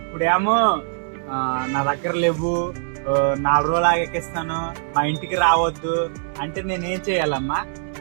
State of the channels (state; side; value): silent; left; 64 dB below the other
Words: ఇప్పుడేమో నా దగ్గర లేవు, 4 రోజులు ఆగేకిస్తాను, మా ఇంటికి రావద్దు అంటే నేనేం చేయాలమ్మా?